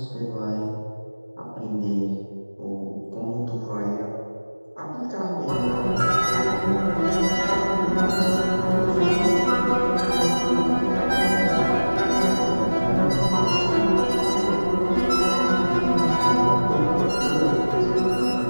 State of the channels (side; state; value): both; inverted; correlation -1.00